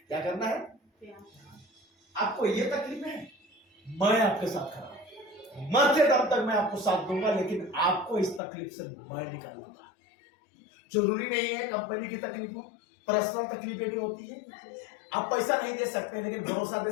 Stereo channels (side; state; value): right; drops out; at 8.4 s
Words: क्या करना है? आपको ये तकलीफ है, मैं आपके साथ खड़ा हूं, मरते दम तक मैं आपको साथ दूंगा, लेकिन आपको इस तकलीफ से मैं निकालूंगा। जरूरी नहीं है कंपनी की तकलीफ हो, पर्सनल तकलीफें भी होती है। आप पैसा नहीं दे सकते, लेकिन भरोसा दे